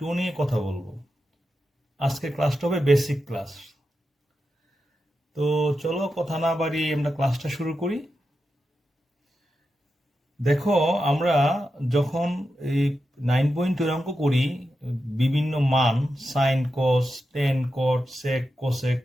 নিয়ে কথা বলবো। আজকে ক্লাসটা হবে বেসিক ক্লাস। তো চলো কথা না বাড়িয়ে আমরা ক্লাসটা শুরু করি। দেখো, আমরা যখন এই 9.2 অঙ্ক করি, বিভিন্ন মান sine cos tan cot sec cosec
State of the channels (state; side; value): normal; both; correlation 0.89